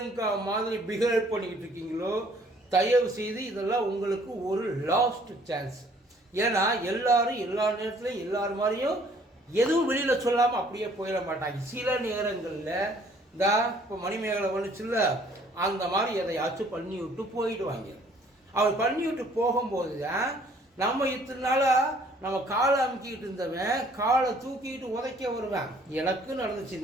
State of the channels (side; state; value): both; normal; correlation 0.59